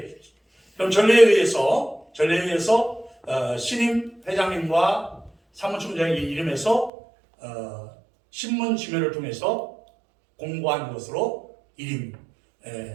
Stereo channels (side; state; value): left; drops out; at 6.9 s